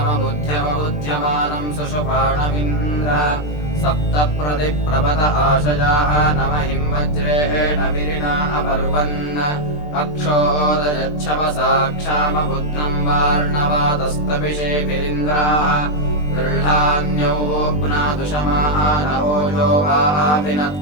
सुषुपाणमिन्द्र सप्तप्रतिप्रभत आशयाः न महिं वज्रेण विरिणा अपर्वन् अक्षोदयच्छवसा क्षामबुद्धं वार्णवातस्तविषेभिरिन्द्राः गृह्णान्योऽप्नादुषमानवोजो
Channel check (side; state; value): right; late; 20 ms